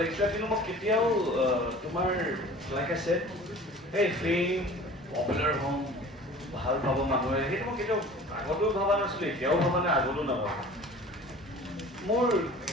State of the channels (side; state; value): both; normal; correlation 0.43